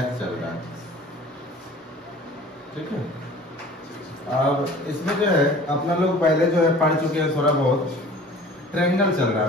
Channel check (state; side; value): normal; both; correlation 0.45